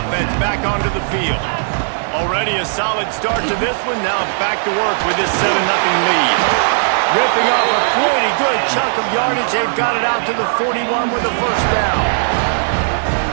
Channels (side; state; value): left; silent; digital silence